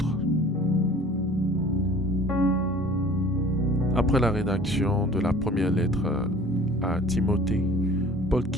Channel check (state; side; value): normal; both; correlation 0.47